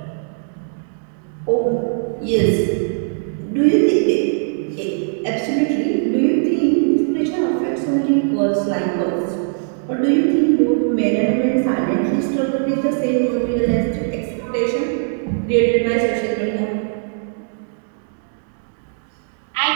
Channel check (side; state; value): left; silent; digital silence